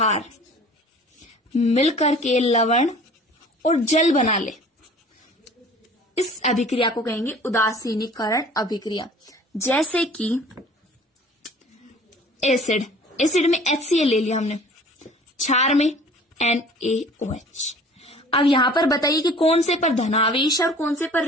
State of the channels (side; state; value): both; normal; correlation 0.48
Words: मिलकर के लवण और जल बना ले, इस अभिक्रिया को कहेंगे उदासीनीकरण अभिक्रिया। जैसे कि एसिड में HCl ले लिया हमने, क्षार में NaOH। अब यहां पर बताइए कि कौन से पर धनावेश है और कौन से पर